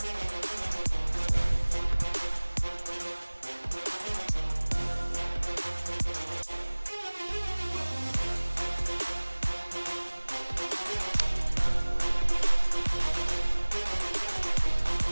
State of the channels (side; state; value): both; inverted; correlation -1.00